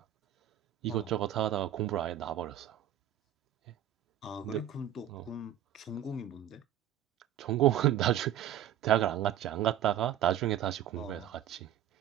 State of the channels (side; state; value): left; quieter; 11.0 dB